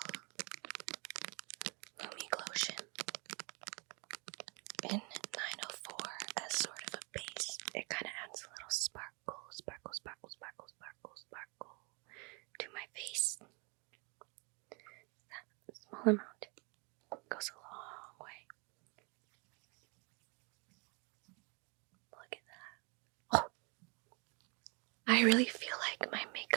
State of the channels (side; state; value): left; quieter; 31.3 dB